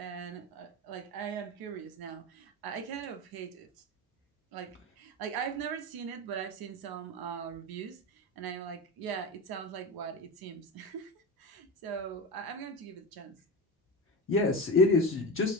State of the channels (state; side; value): normal; both; correlation 0.22